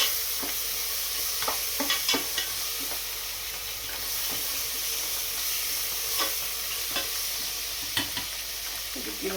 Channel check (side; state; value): both; identical; correlation 1.00